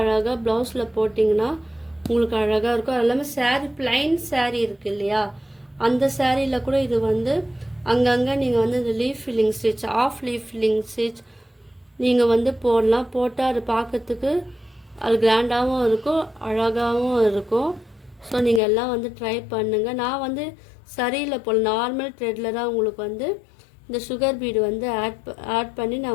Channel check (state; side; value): drops out; right; at 18.6 s